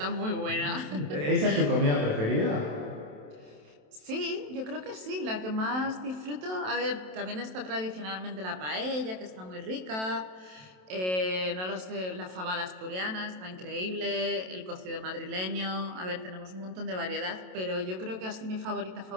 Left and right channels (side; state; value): left; late; 27 ms